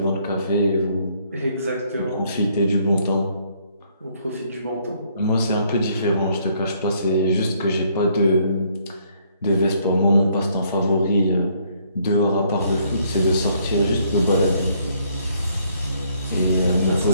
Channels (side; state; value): both; inverted; correlation -0.67